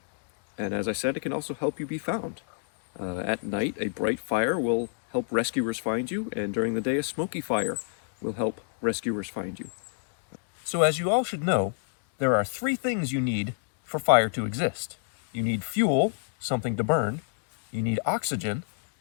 And as I said, it can also help you be found. At night, a bright fire will help rescuers find you, and during the day, a smoky fire will help rescuers find you. So as you all should know, there are 3 things you need for fire to exist. You need fuel, something to burn, you need oxygen,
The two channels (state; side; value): silent; right; digital silence